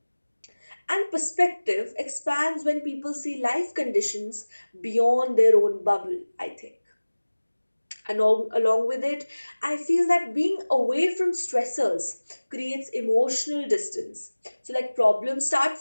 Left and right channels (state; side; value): inverted; both; correlation -1.00